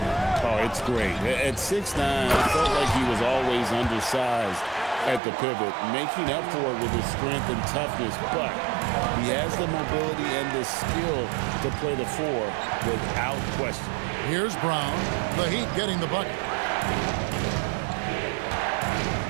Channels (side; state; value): left; drops out; at 5.2 s